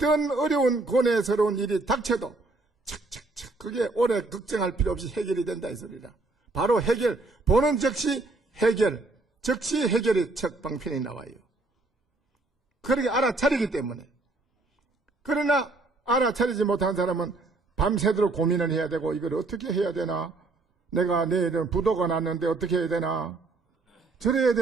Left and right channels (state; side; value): quieter; left; 3.3 dB